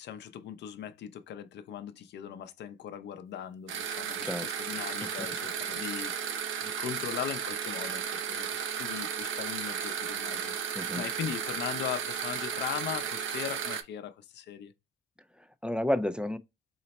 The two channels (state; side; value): normal; both; correlation 0.24